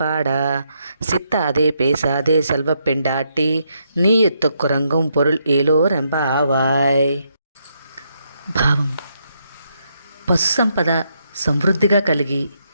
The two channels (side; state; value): both; inverted; correlation -0.77